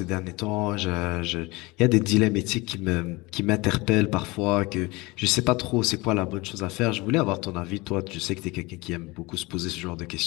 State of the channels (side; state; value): right; quieter; 23.3 dB